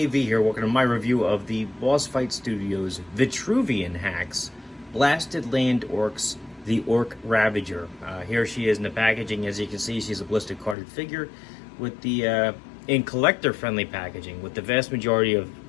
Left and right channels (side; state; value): right; drops out; at 10.8 s